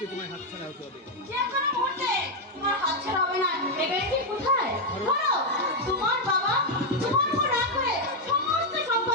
তোমার হাতছাড়া হতে হবে। যে কোনো মুহূর্তে তোমার হাত ছাড়া হবে না। এবারে কি কোথায়? ধরো তোমার বাবা তোমার উপর রাগ করে সমস্ত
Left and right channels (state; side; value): normal; both; correlation 0.02